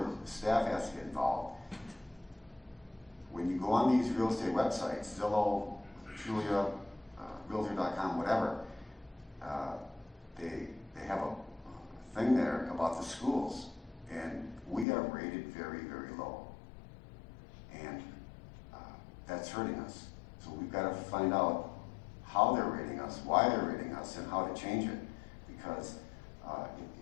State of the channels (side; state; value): right; drops out; at 14.9 s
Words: the staff has to get involved, when you go on these real estate websites, Zillow, Julia, Realtor.com, whatever, they have a thing there about the schools, and we are rated very, very low. And that's hurting us. So we've got to find out how they're rating us, why they're rating us, and how to change it. Because